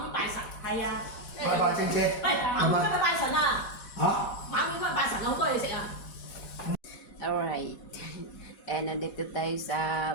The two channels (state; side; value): late; right; 4.1 ms